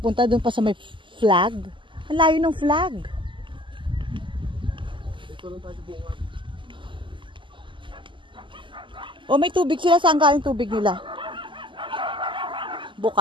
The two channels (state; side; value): late; left; 0.24 ms